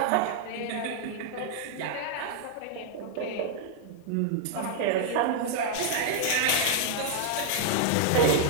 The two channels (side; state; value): both; different; correlation -0.01